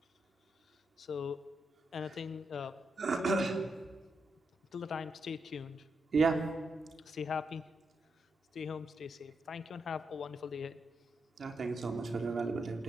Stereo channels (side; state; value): both; normal; correlation 0.83